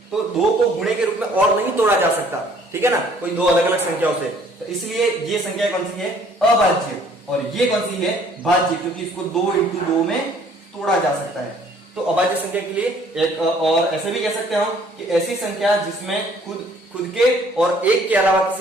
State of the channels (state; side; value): normal; both; correlation 0.59